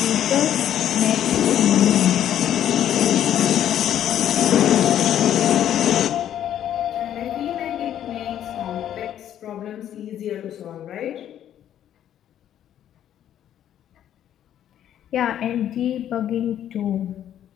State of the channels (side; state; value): right; quieter; 10.7 dB